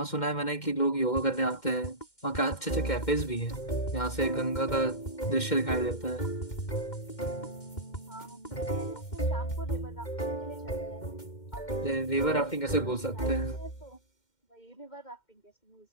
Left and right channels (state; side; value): late; right; 2.1 ms